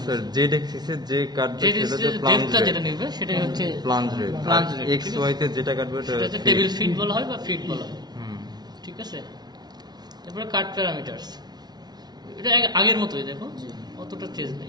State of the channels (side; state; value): left; late; 0.19 ms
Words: স্যার জেড এক্সিসে যে কাটবে সেটা ডেপথটা যেটা নেবে সেটাই হচ্ছে plunge rate. Plunge rate. X Y তে যেটা কাটবে সেটা হচ্ছে টেবিল ফিট বলা হয় বা ফিট বলা হয়, ঠিক আছে? তারপরে কাট প্যারামিটারস, এটা আগের মতোই, দেখো অতটা চেঞ্জ